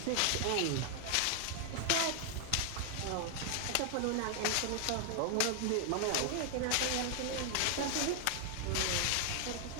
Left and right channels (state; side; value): different; both; correlation 0.00